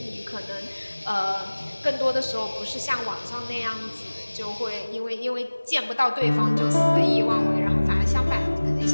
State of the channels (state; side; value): inverted; both; correlation -1.00